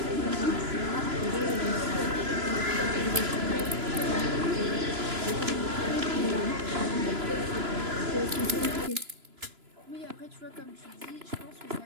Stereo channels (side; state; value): left; late; 3.0 ms